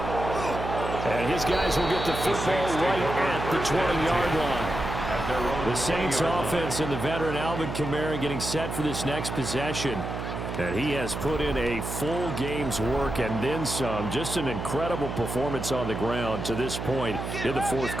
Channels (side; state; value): right; noise; hum, 5 dB below the sound